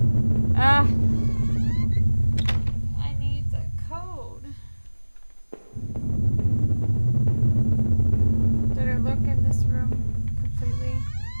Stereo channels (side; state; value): both; inverted; correlation -1.00